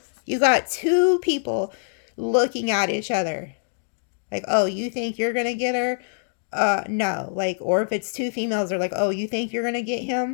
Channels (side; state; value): right; silent; digital silence